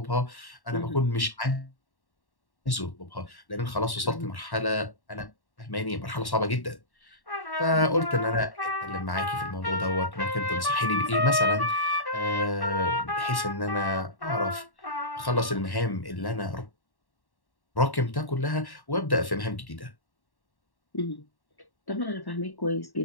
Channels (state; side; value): late; right; 1.1 ms